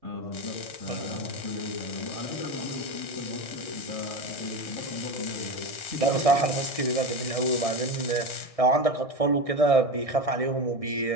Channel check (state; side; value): late; right; 1.6 ms